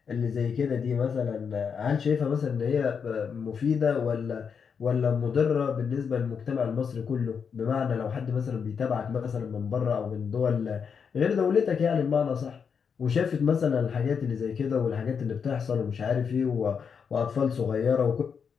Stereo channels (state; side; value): quieter; right; 6.5 dB